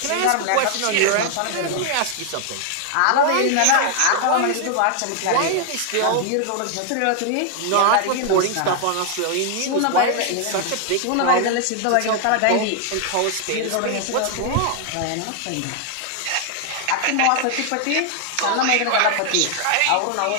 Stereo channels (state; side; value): different; both; correlation 0.00